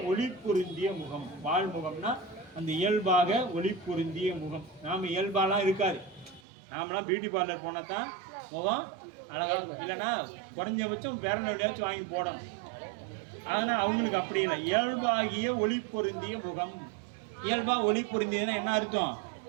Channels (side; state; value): left; drops out; at 6.4 s